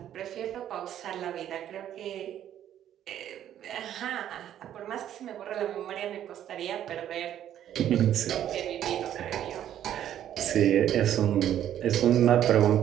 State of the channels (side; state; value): left; quieter; 10.9 dB